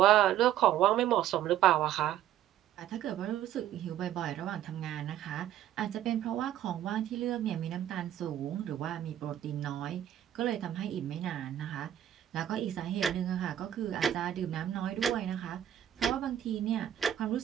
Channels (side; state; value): left; quieter; 11.5 dB